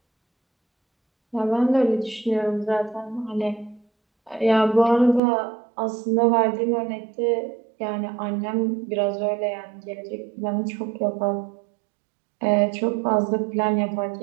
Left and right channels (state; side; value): drops out; left; at 5.2 s